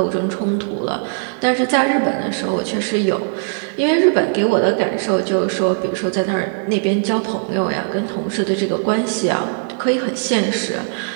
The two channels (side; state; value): left; silent; digital silence